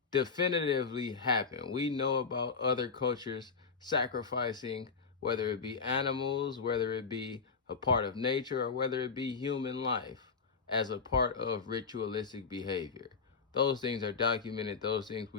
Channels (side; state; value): right; quieter; 5.2 dB